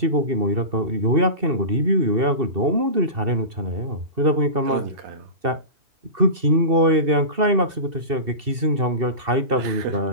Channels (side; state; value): left; late; 2.7 ms